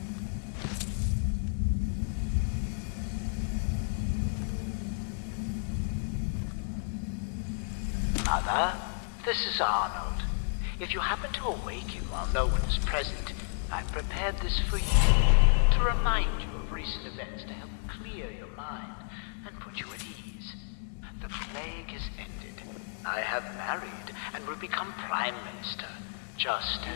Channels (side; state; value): right; silent; digital silence